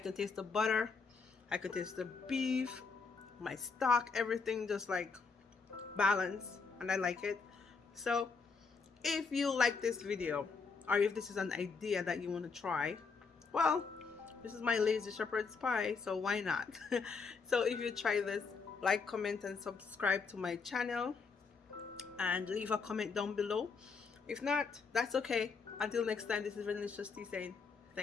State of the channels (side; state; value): right; quieter; 5.0 dB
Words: taste the butter, I can taste the beef, my stock, everything just like balanced, and I like it. So if you like this video, or if this is an idea that you want to try, well, this is my lazy shepherd's pie, so why not? So if you try this, like, comment, and subscribe to my channel, and leave a comment down below. If not, that's okay. Until next time, this is Venilicious Tea saying